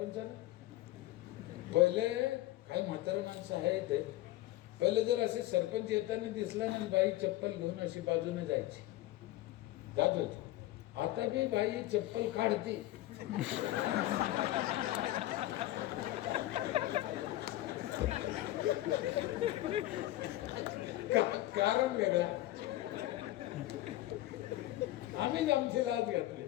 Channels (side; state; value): right; quieter; 15.9 dB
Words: पहिले काही म्हातारा माणसं आहे ते, पहिले जर असे सरपंच येताना दिसला ना, बाई चप्पल घेऊन अशी बाजूने जायची, जात होती. आता बी बाई चप्पल काढते. कारण वेगळा. आम्हीच आमची लाज घातली.